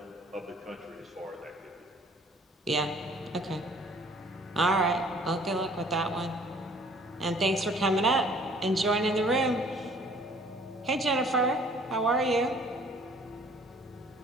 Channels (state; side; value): normal; both; correlation 0.56